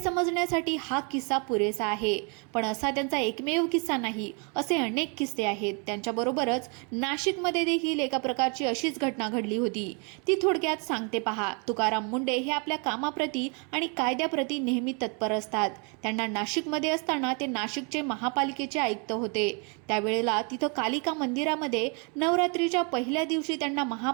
हा किस्सा पुरेसा आहे. पण असा त्यांचा एकमेव किस्सा नाही, असे अनेक किस्से आहेत. त्यांच्याबरोबरच नाशिकमध्ये देखील एका प्रकारची अशीच घटना घडली होती. ती थोडक्यात सांगते पहा. तुकाराम मुंडे हे आपल्या कामाप्रती आणि कायद्याप्रती नेहमी तत्पर असतात. त्यांना नाशिकमध्ये असताना ते नाशिकचे महापालिकेचे आयुक्त होते. त्यावेळेला तिथं कालिका मंदिरामध्ये नवरात्रीच्या पहिल्या दिवशी त्यांना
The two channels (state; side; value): quieter; left; 35.3 dB